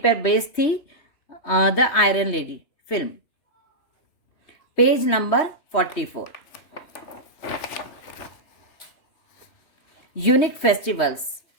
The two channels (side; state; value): right; late; 3.2 ms